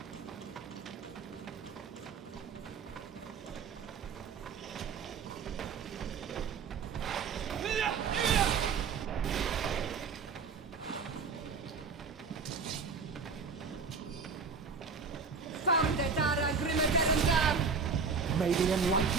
Found the Dara Grimaderandam! May the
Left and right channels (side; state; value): left; quieter; 5.2 dB